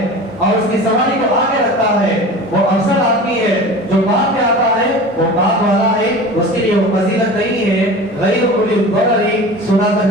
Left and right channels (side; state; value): both; normal; correlation 0.36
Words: اور اس کی سواری کو آگے رکھتا ہے، وہ افضل آدمی ہے، جو بعد میں آتا ہے وہ بعد والا ہے، اس کے لیے وہ فضیلت نہیں ہے، غیر اولی الضرر سنا کر